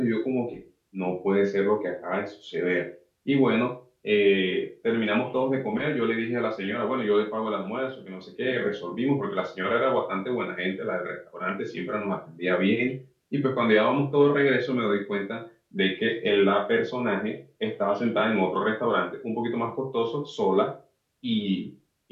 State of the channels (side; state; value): both; identical; correlation 1.00